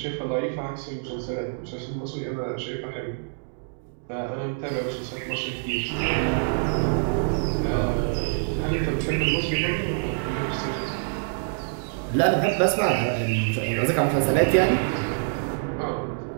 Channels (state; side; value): silent; left; digital silence